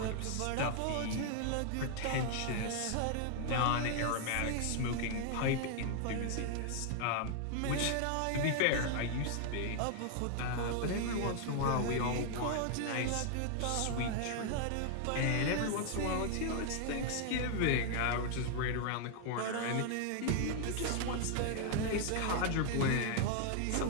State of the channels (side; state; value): both; different; correlation 0.00